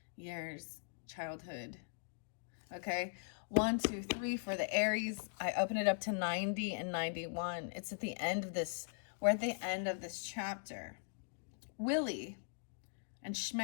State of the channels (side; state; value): right; silent; digital silence